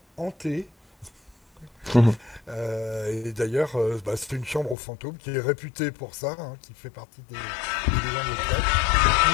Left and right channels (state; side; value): drops out; right; at 4.8 s